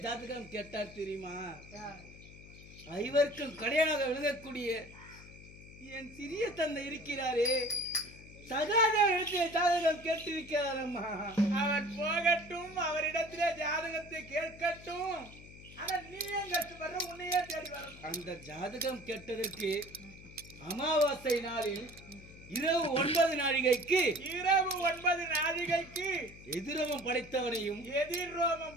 ஜாதகம் கேட்டார் தெரியுமா? ஐவருக்கும் கடையாக விளங்கக்கூடிய என் சிறிய தந்தை இருக்கிறாரே, சகாதேவனிடத்திலே ஜாதகம் கேட்டிருக்கிறார் அம்மா. அவர் போகட்டும், அவரிடத்திலே ஜாதகத்தை கேட்கட்டும். ஆனா நீ ஏன் கஷ்டப்படுற, உன்னையே தேடி வரணும். அந்த ஜாதகம் கேட்டதற்கு அமாவாசை நாளில் இரவு 9 நாழிகைக்கு எதிரோமம் படைத்தவனையும்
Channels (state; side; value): noise; left; hum, 18 dB below the sound